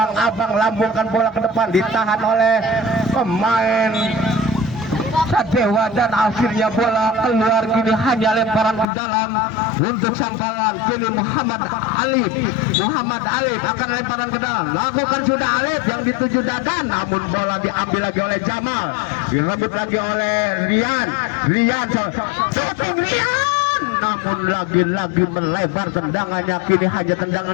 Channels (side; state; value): right; drops out; at 8.8 s